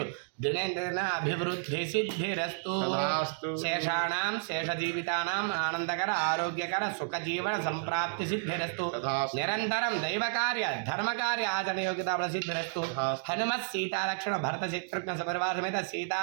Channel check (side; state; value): left; silent; digital silence